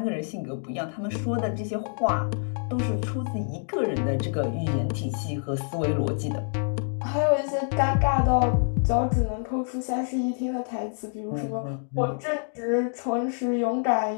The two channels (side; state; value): right; silent; 57 dB below the other